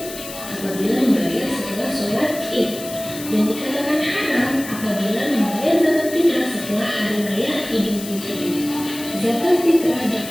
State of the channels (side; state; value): left; noise; hiss, 12 dB below the sound